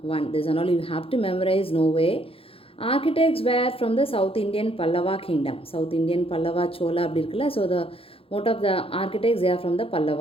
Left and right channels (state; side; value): late; right; 0.27 ms